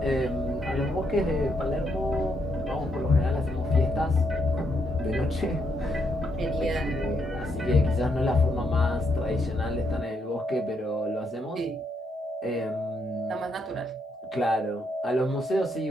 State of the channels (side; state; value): both; normal; correlation 0.77